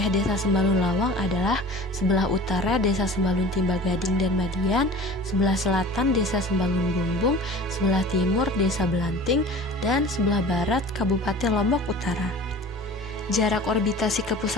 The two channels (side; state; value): both; normal; correlation 0.41